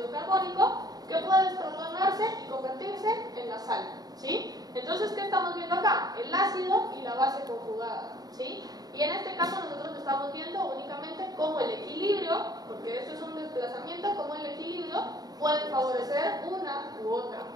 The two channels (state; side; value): late; left; 0.19 ms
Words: carbónico, que puede desprotonarse y convertirse en la sal, ¿sí? Entonces, ¿qué estamos viendo acá? El ácido y la base conjugada, ¿sí? Y en este caso nosotros estamos viendo únicamente cómo el equilibrio, porque esto es un desplazamiento, cómo el equilibrio puede favorecer una u otra.